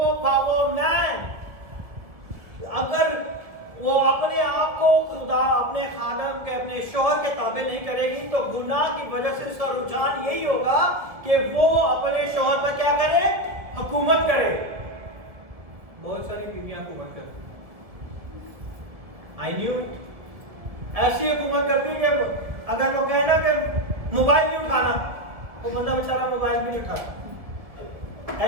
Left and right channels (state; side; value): late; left; 1.7 ms